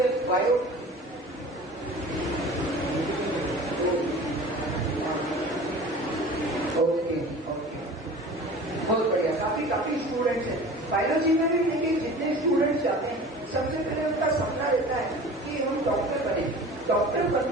बायो, ओके, बहुत बढ़िया, काफी स्टूडेंट्स हैं। बायोलॉजी में भी देखिए जितने स्टूडेंट्स जाते हैं, सबसे पहले उनका सपना रहता है कि हम डॉक्टर बने। डॉक्टर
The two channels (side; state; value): both; normal; correlation 0.40